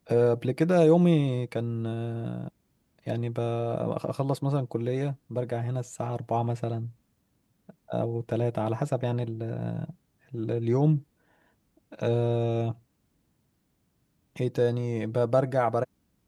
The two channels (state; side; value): identical; both; correlation 1.00